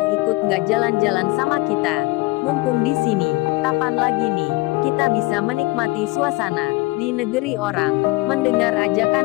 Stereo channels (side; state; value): right; quieter; 22.3 dB